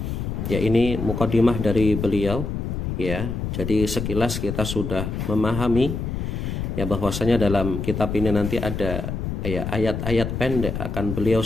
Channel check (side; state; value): left; noise; rumble, 4 dB below the sound